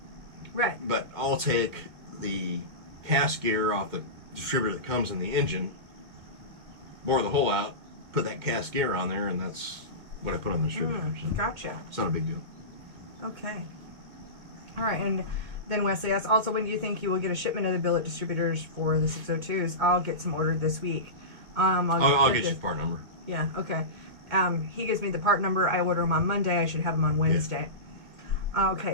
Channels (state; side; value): late; left; 2.1 ms